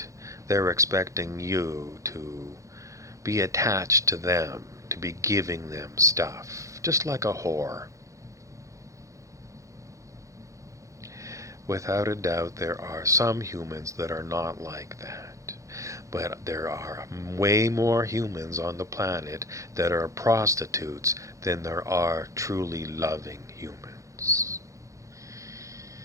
they're expecting you to be attached to them, to be giving them stuff, just like a whore. Without a doubt, there are some humans that are not like that. But there are way more humans on the planet that are prostitutes than there are truly loving humans.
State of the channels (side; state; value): left; late; 0.15 ms